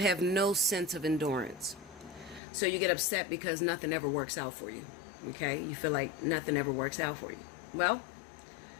no sense of endurance. So you get upset because nothing ever works out for you, okay? You feel like nothing ever works out for you. Well,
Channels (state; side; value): drops out; right; at 2.4 s